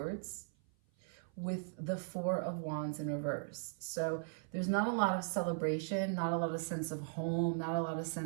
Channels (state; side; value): silent; left; 52 dB below the other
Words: with the Four of Wands in reverse. So there's not a lot of celebration, not a lot of sense of home, not a lot of